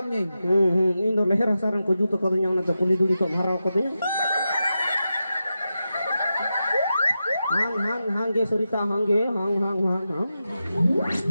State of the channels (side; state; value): both; inverted; correlation -0.90